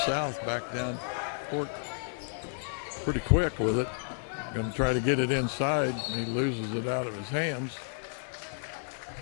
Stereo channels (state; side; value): silent; right; 57 dB below the other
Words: back down court pretty quick with it. Going to try to get it inside, and he loses it out of his hands.